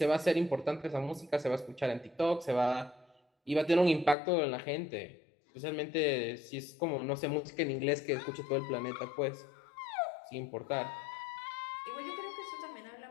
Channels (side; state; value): right; drops out; at 4.2 s